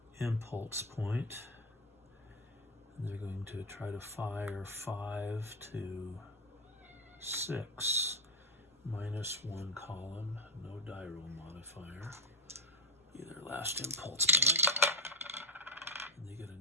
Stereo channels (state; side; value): normal; both; correlation 0.11